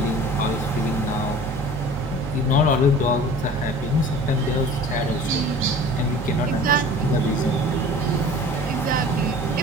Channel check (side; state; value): both; normal; correlation 0.43